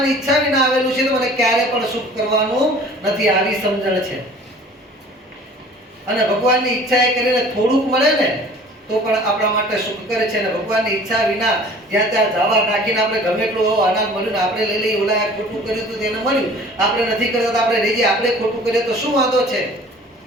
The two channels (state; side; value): normal; both; correlation 0.48